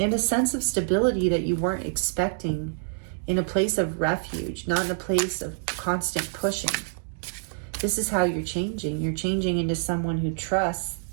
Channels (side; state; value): left; silent; digital silence